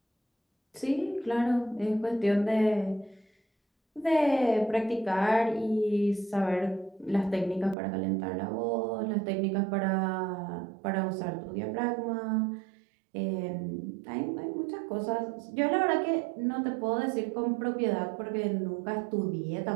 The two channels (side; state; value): left; drops out; at 7.8 s